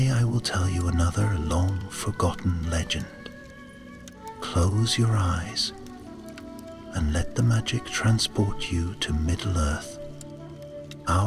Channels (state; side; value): identical; both; correlation 1.00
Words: I will tell you another long-forgotten legend. Close your eyes and let the magic transport you to Middle-earth.